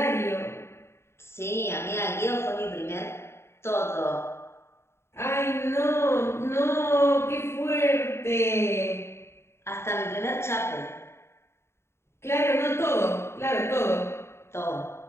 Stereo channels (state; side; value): late; right; 0.12 ms